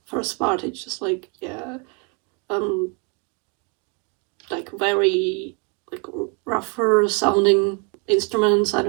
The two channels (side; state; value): left; quieter; 31.6 dB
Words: first part. It's just like, yeah, like very like rougher sounding instruments. I